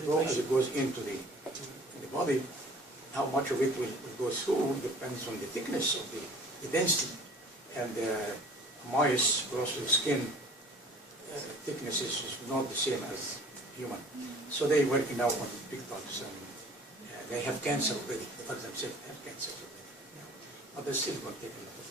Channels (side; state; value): both; normal; correlation 0.48